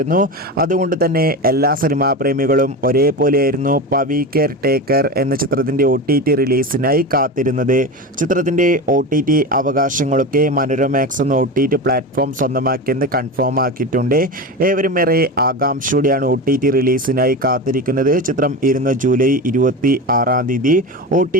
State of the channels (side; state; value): both; normal; correlation 0.24